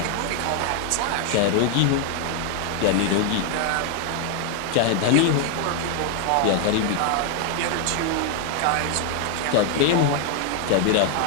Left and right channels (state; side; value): different; both; correlation 0.00